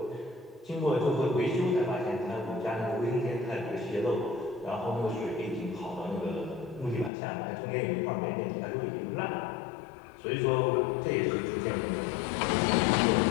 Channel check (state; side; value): drops out; right; at 7.1 s